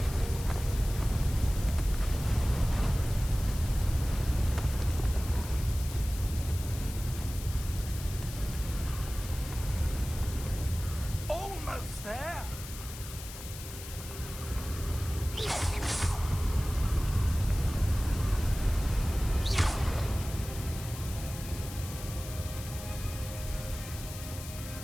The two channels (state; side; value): noise; left; hiss, 12 dB below the sound